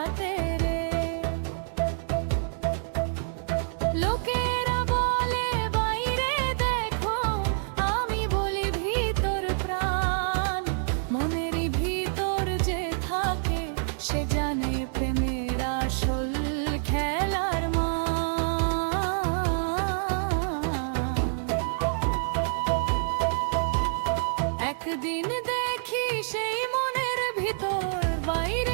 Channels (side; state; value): left; silent; digital silence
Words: রে লোকেরা বলে বাইরে দেখো আমি বলি ভিতর প্রাণ মনের ভিতর যে থাকে সে জানে প্রেমের আসল খেলার একদিন দেখি সেই মনের ভিতর